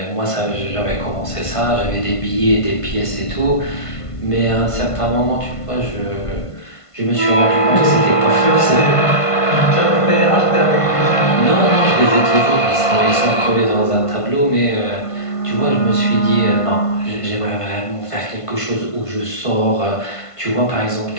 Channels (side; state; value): right; late; 1.5 ms